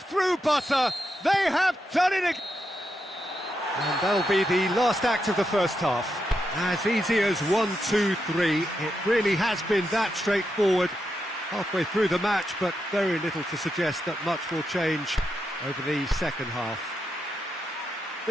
through butter. They have done it again. And that'll be the last act of the first half. As easy as 1, 2, 3. It really has been that straightforward halfway through the match, but very little to suggest that much will change over the second half.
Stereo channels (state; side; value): normal; both; correlation 0.84